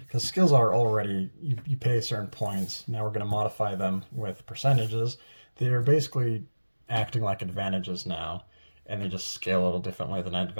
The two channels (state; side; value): inverted; both; correlation -1.00